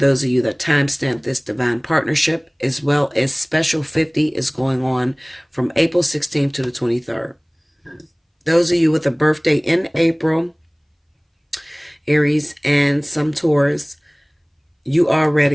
of you that timestamp this divine partnership, as well as Special 50 is going on from April 16th to the 23rd. Those of you with a birthday in April, Aries and some Taurus, you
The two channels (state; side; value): identical; both; correlation 1.00